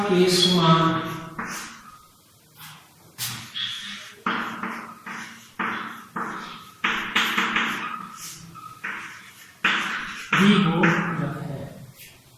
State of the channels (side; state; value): both; identical; correlation 1.00